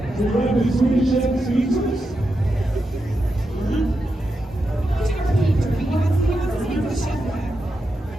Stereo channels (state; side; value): normal; both; correlation 0.87